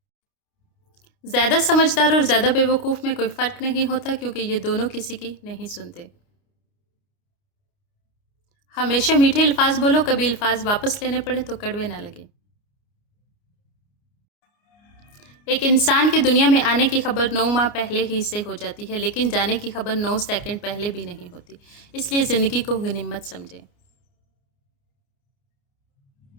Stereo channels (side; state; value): right; late; 29 ms